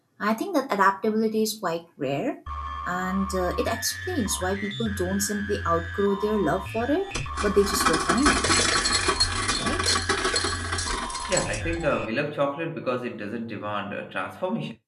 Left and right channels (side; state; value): both; identical; correlation 1.00